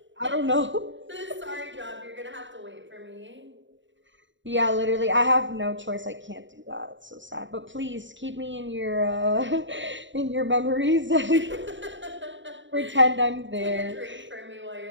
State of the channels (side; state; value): left; late; 0.54 ms